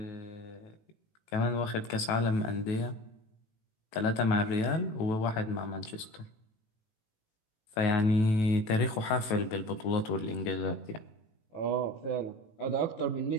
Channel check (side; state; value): right; late; 18 ms